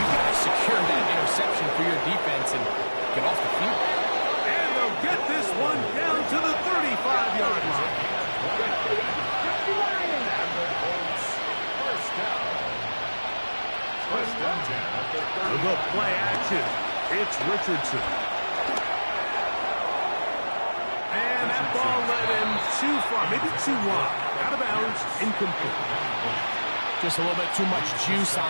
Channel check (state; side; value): inverted; both; correlation -1.00